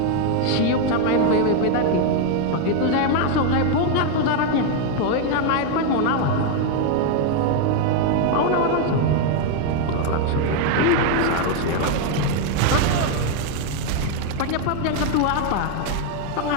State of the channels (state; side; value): different; both; correlation 0.01